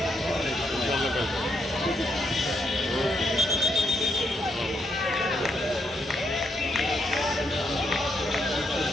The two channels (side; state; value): both; normal; correlation 0.77